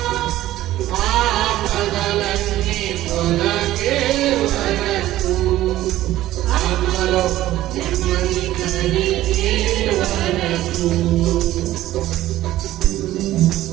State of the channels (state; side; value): quieter; left; 14.8 dB